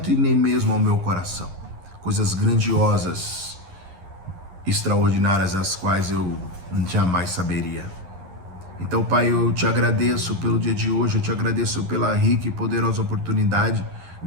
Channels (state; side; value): late; left; 11 ms